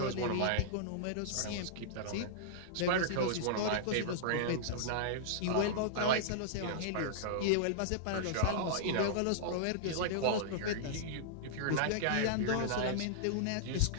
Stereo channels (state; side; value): different; both; correlation -0.02